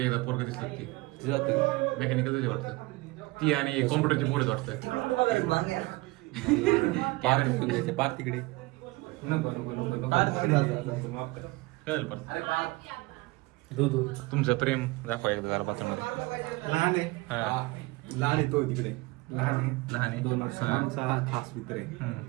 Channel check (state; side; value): quieter; left; 22.6 dB